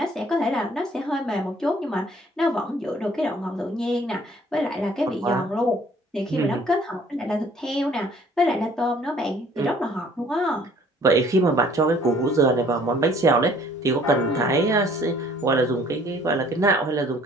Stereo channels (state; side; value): normal; both; correlation 0.57